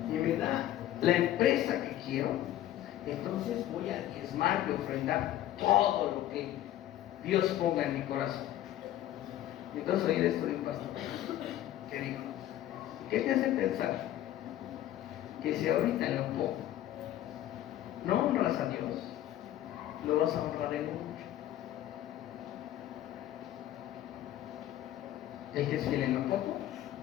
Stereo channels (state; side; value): quieter; right; 13.0 dB